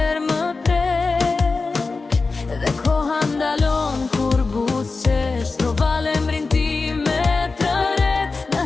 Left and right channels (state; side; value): quieter; right; 4.0 dB